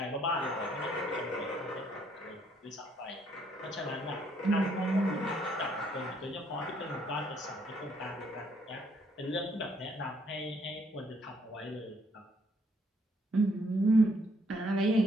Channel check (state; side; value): normal; both; correlation 0.68